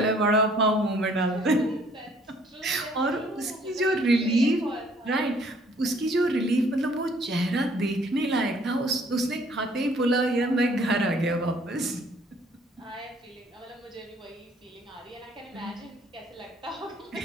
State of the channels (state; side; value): normal; both; correlation 0.60